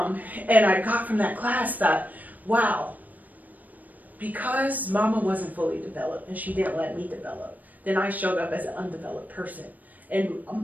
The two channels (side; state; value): left; late; 0.081 ms